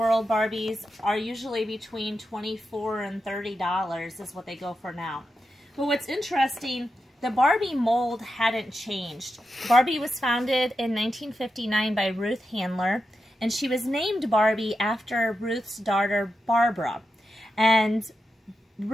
Barbies are usually between $24 and $30 is what they go for now. But what's interesting, the Barbie mold hadn't changed. Barbie was founded in 1959 by Ruth Handler, and she was named Barbie after Ruth's daughter, Barbara. And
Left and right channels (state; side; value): normal; both; correlation 0.88